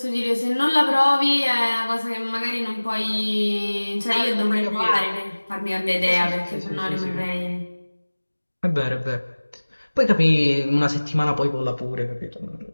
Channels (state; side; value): inverted; both; correlation -1.00